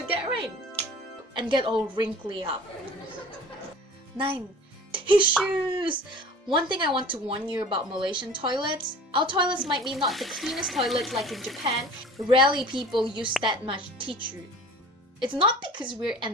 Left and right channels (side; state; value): both; normal; correlation 0.43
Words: get rain and get all wrinkly up. 9. Tissues! One thing I want to warn you about Malaysian toilets, our toilets might be not the cleanest toilets like in Japan. Rarely people use that much tissue. It's not because we're